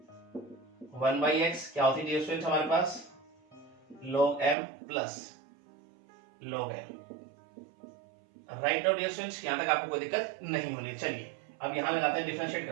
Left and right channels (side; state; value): left; drops out; at 4.5 s